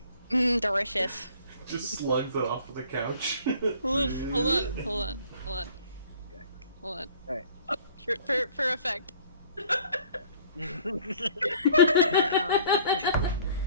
Delicious. Just slugs it off of the couch. Hold on. Okay. Hold on. Alright. For effect.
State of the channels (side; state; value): both; inverted; correlation -0.53